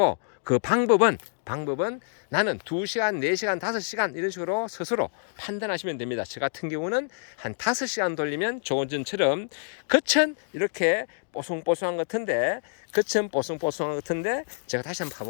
방법은 나는 2시간, 4시간, 5시간 이런 식으로 스스로 판단하시면 됩니다. 저 같은 경우는 한 5시간 돌리면 조금 전처럼 겉은 이렇게 뽀송뽀송한 것 같은데, 제가 다시 한번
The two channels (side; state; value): right; silent; digital silence